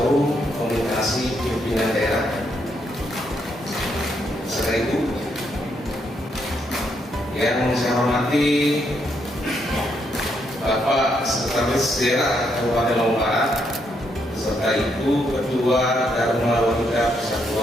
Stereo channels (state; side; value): normal; both; correlation 0.76